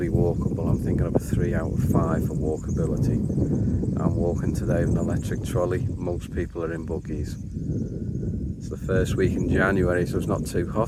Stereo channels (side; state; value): both; identical; correlation 1.00